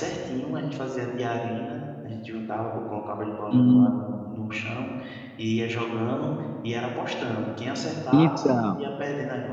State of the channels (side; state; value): both; identical; correlation 1.00